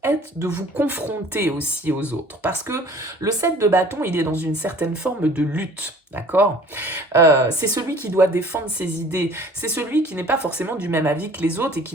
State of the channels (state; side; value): normal; both; correlation 0.50